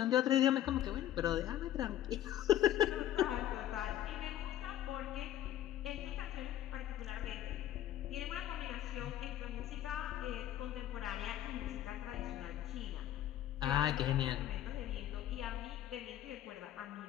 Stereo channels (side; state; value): right; quieter; 12.4 dB